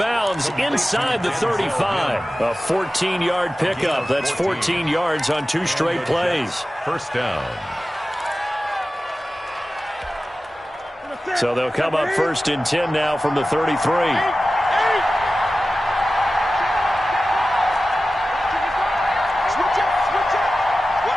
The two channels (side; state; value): both; normal; correlation 0.95